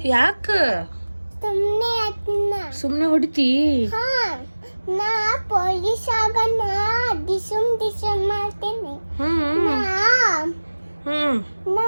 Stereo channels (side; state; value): both; inverted; correlation -1.00